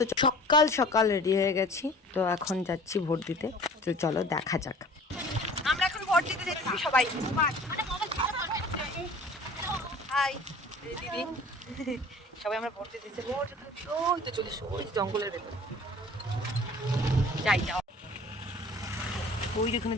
সকাল সকাল রেডি হয়ে গেছি। তো এখন যাচ্ছি ভোট দিতে। তো চলো দেখা যাক। আমরা এখন ভোট দিতে যাচ্ছি সবাই। হাই দিদি, সবাই আমরা ভোট দিতে যাচ্ছি। ভোট ওই তো চলিস, ওই জঙ্গলের ভেতর যাই যাও। ওই যেখানে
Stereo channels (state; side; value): normal; both; correlation 0.46